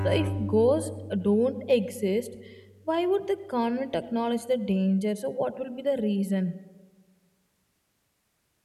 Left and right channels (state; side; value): identical; both; correlation 1.00